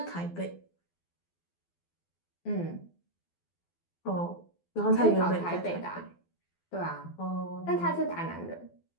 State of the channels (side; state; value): right; late; 12 ms